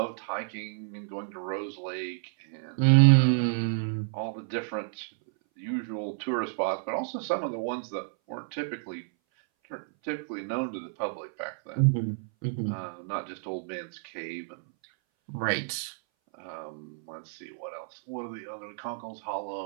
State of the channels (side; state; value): left; silent; 58 dB below the other